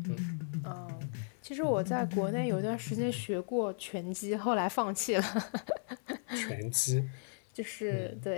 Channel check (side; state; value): right; silent; 54 dB below the other